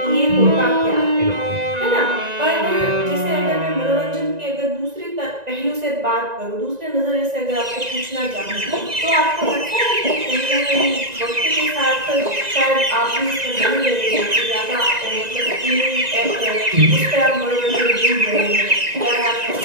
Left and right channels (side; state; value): left; late; 1.9 ms